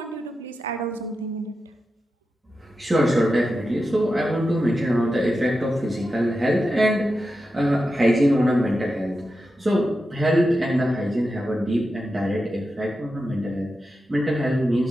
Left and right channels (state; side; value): normal; both; correlation 0.90